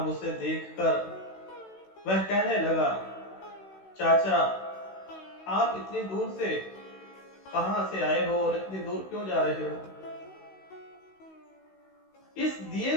उसे देखकर वह कहने लगा, चाचा, आप इतनी दूर से कहां से आए हो और इतनी दूर क्यों जा रहे हो? इस दिए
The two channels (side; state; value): right; late; 16 ms